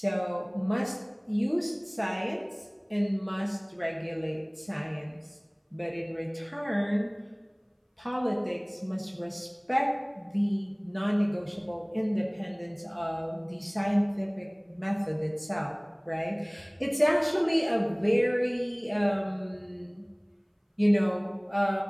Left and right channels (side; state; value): both; identical; correlation 1.00